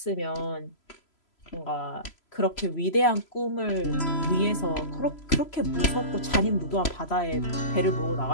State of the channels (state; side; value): late; right; 3.0 ms